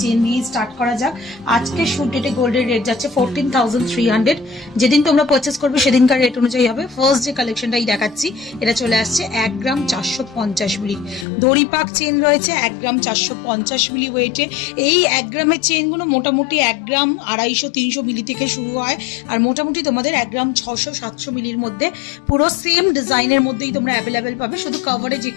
চেন নিয়ে স্টার্ট করা যাক। আজকে শুট ডেটে গোল্ডের রেট যাচ্ছে 14,300। যেদিন তোমরা পারচেস করবে সেদিনকার রেট অনুযায়ী হবে। ফার্স্ট যে কালেকশনটাই দেখাচ্ছি এটা চলে আসছে 1 গ্রাম 450 মিলি দড়িপাক চেন রয়েছে। 1 গ্রাম 450 মিলি ওয়েটে এই 1 গ্রামের চেনগুলো মোটামুটি 1 গ্রাম 250-300 মিলি থেকে শুরু হয় আর মোটামুটি তোমাদের 1 গ্রাম 600-700 মিলির মধ্যে পুরো সেম ডিজাইনের মধ্যেই তোমরা অ্যাভেলেবেল পাবে। শুধু কভারেজ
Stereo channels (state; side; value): drops out; right; at 11.2 s